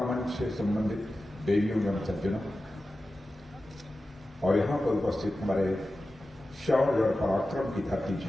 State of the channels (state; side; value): normal; both; correlation 0.94